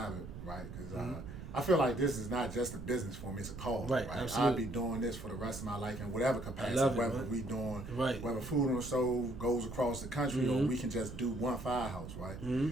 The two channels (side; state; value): right; noise; rumble, 11 dB below the sound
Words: it, right? Because I feel like this is not just a business for me; it's a cause. Right, absolutely. I'll be doing this for the rest of my life in whatever capacity. Whether we doing, whether food on the stove goes across the country, or we can just do one firehouse, right?